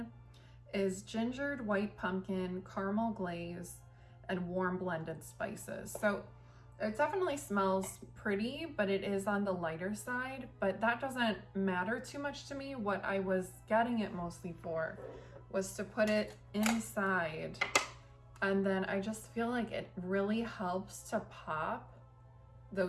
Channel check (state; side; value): identical; both; correlation 1.00